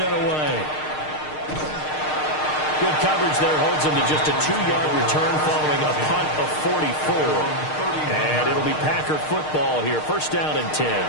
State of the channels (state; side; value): late; right; 6.5 ms